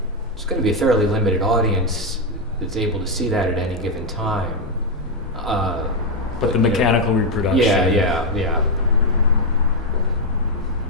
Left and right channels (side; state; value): both; normal; correlation 0.02